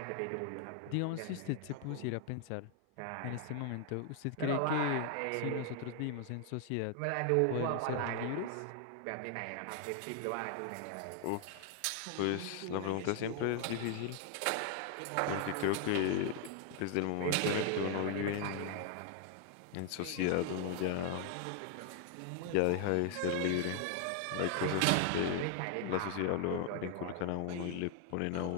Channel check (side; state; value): both; different; correlation 0.00